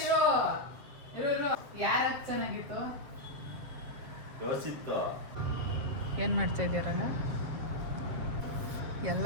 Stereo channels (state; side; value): late; left; 7.3 ms